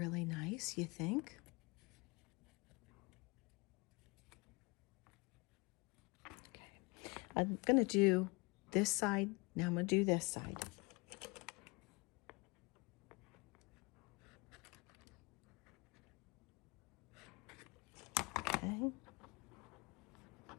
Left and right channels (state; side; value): quieter; right; 27.5 dB